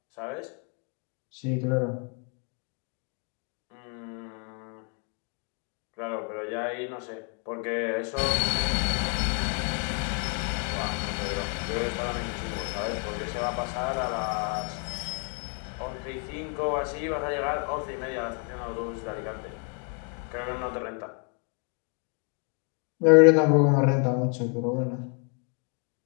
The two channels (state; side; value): quieter; right; 38.8 dB